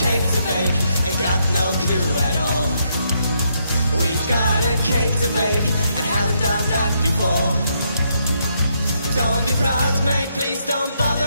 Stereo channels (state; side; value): inverted; both; correlation -0.76